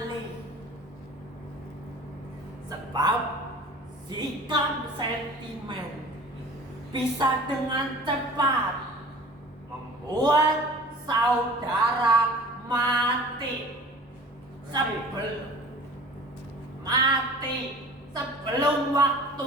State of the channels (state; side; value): normal; both; correlation 0.43